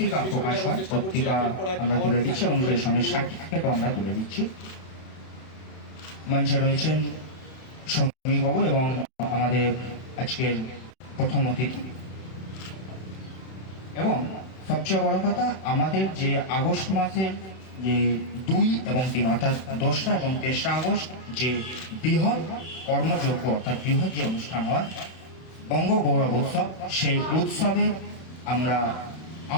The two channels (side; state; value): right; late; 32 ms